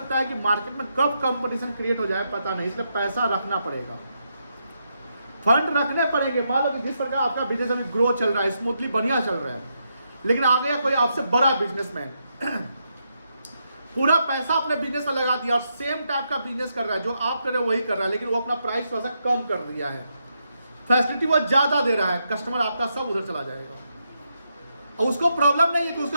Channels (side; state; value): both; inverted; correlation -0.81